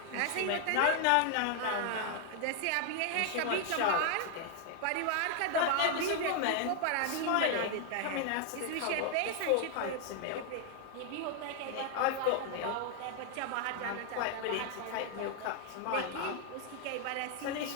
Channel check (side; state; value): both; different; correlation 0.00